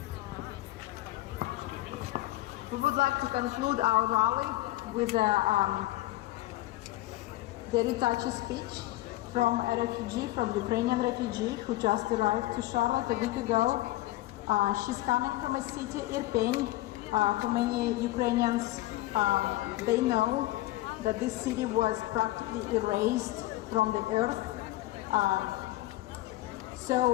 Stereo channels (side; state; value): right; quieter; 17.1 dB